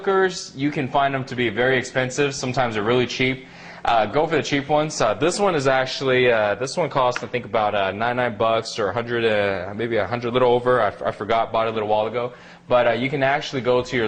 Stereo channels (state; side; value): identical; both; correlation 1.00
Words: you can find them to be very expensive. Sometimes they're really cheap. Go for the cheap ones. This one is actually, this one costs I think about $99 or 100, maybe 100, little over. I forgot, bought it a little while ago. But you can actually go to your